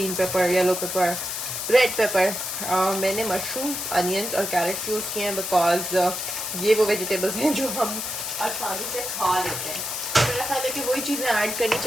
pepper, yellow paper, red pepper. मैंने मशरूम्स, अनियंस और कैरेट्स यूज़ किए हैं बिकॉज ये वो वेजिटेबल्स हैं जो हम आसानी से खा लेते हैं। मेरा ख्याल है कि वही चीज़ें ऐड करनी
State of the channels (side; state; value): left; noise; hiss, 4 dB below the sound